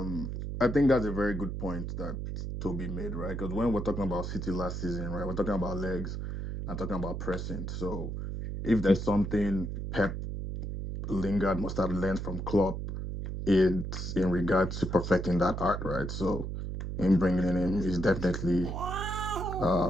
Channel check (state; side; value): noise; right; hum, 5 dB below the sound